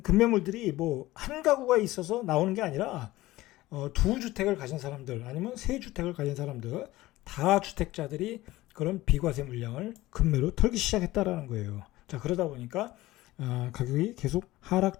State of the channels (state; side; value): quieter; right; 17.6 dB